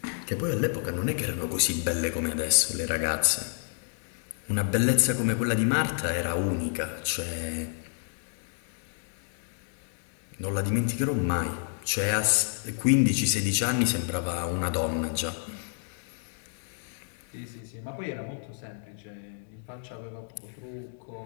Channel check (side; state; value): right; silent; digital silence